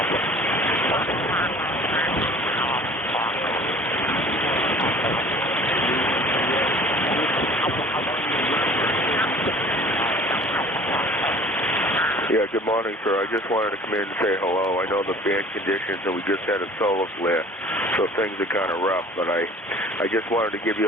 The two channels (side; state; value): both; normal; correlation 0.47